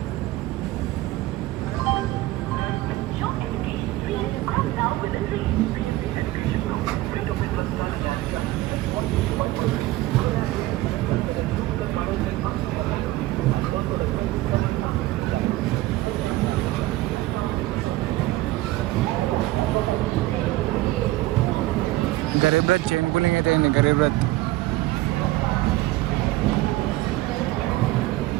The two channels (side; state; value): left; quieter; 17.7 dB